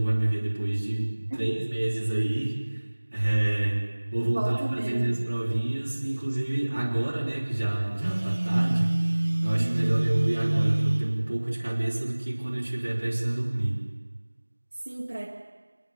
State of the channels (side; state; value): both; inverted; correlation -1.00